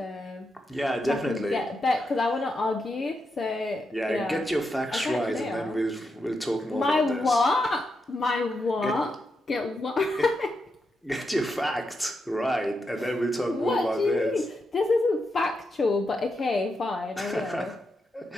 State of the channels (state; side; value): normal; both; correlation 0.85